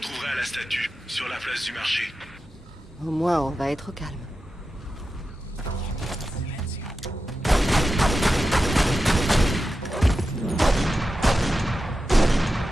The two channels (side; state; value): both; normal; correlation 0.91